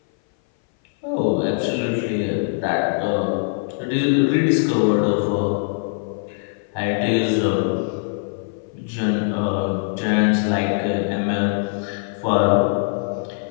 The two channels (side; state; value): right; silent; 59 dB below the other